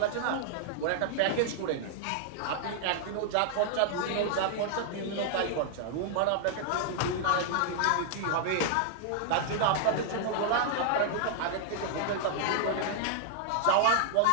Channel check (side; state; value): both; different; correlation -0.01